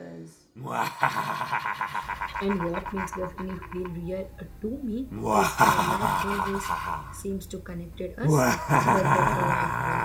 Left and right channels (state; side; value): identical; both; correlation 1.00